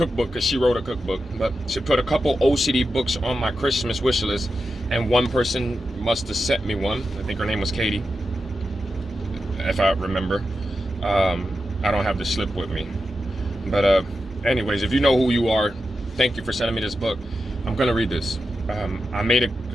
because she wrote a cookbook, but she put a couple OCD books on my Christmas wish list, and one person must have sent me one. I think her name was Katie, if I remember. I don't have the slip with me, but anyways, if you know who you are, thank you for sending me this book. I'm gonna read this. I made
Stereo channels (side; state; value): both; normal; correlation 0.89